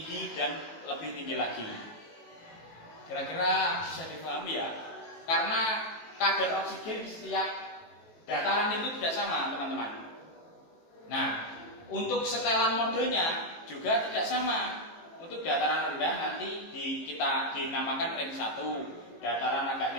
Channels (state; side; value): late; right; 18 ms